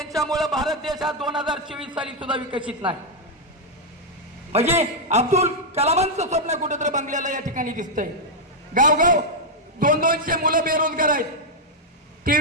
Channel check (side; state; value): both; normal; correlation -0.01